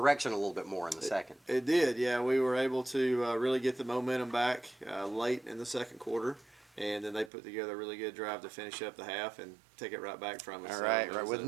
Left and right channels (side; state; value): left; drops out; at 7.3 s